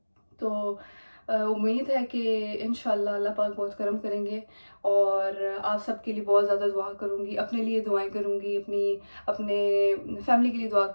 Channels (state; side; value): inverted; both; correlation -1.00